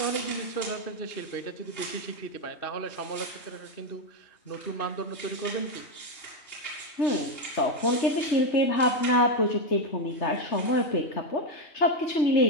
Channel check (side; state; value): right; late; 3.2 ms